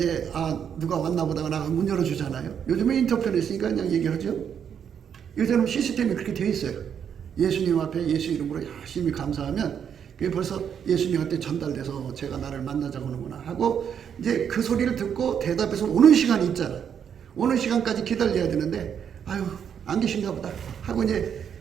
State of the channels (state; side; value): quieter; left; 8.1 dB